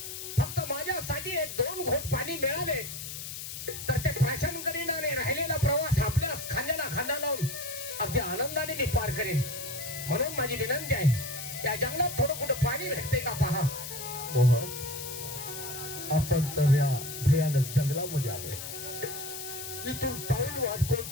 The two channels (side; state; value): left; noise; hiss, 8 dB below the sound